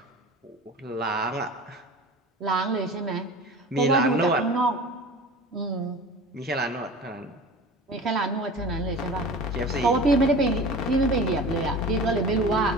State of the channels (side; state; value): both; normal; correlation 0.37